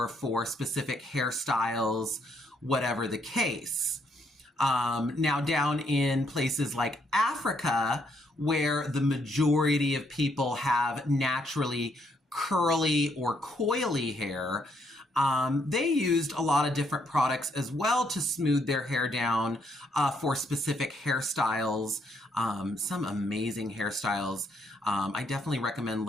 for specific hairstyles, whatever the case. Now, down in places like Africa, where the majority of people have naturally curly or coily hair, they used a lot of different products as well to smooth their hair down for specific hairstyles. Some amazing hairstyles. I definitely recommend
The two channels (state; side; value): normal; both; correlation 0.73